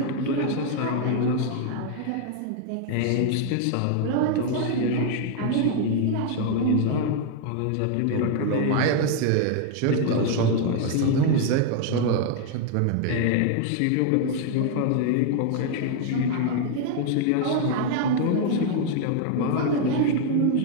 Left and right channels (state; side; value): different; both; correlation 0.00